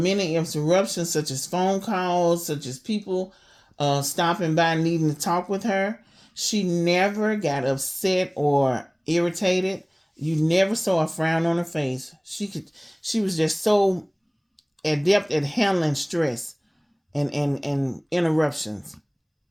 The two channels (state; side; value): identical; both; correlation 1.00